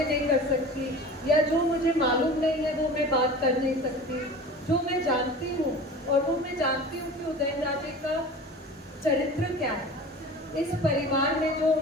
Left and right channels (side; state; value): both; normal; correlation 0.38